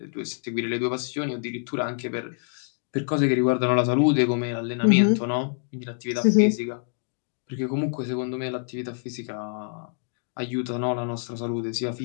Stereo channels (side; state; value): right; silent; digital silence